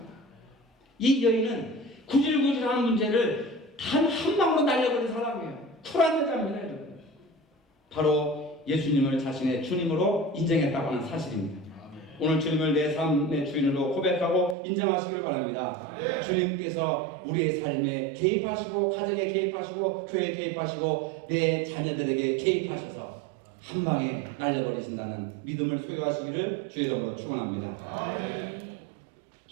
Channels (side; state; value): left; drops out; at 14.6 s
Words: 이 여인은 구질구질한 문제를 단 한 방으로 날려버린 사람이에요. 쿨한 여자입니다, 여러분. 바로 예수님을 자신의 주님으로 인정했다고 하는 사실입니다. 오늘 주님을 내 삶의 주인으로 고백하고 인정하시길 바랍니다. 주님께서 우리의 삶에 개입하시고 가정에 개입하시고 교회에 개입하시고 내 자녀들에게 개입하셔서 한 방에 날려버리신다는 믿음을 소유하시기를 주의 이름으로 축원합니다.